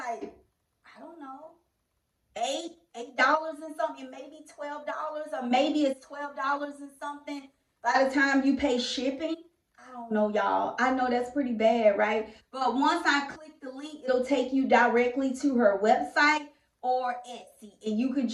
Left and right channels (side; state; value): both; identical; correlation 1.00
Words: I don't know, $8 and something, maybe $12, or maybe it's $12 and something by the time you pay shipping. I don't know, y'all. I know that's pretty bad, right? But once I click the link, it'll take you directly to her website or Etsy, and you could